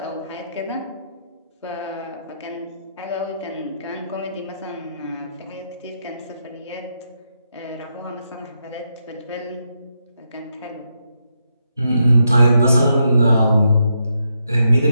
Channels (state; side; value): inverted; both; correlation -0.81